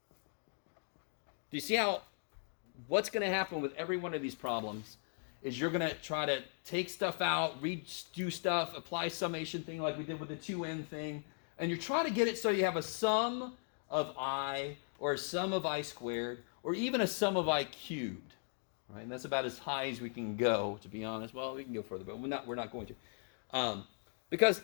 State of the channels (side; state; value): right; silent; 52 dB below the other